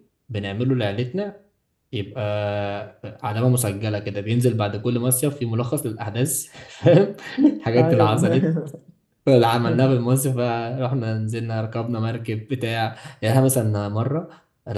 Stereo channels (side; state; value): both; identical; correlation 1.00